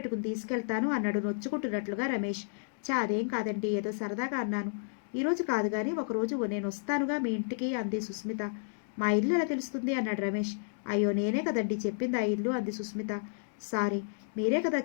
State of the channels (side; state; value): right; silent; digital silence